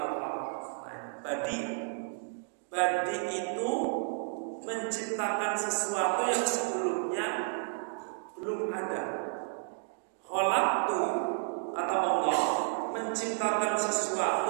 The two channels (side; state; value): left; silent; 56 dB below the other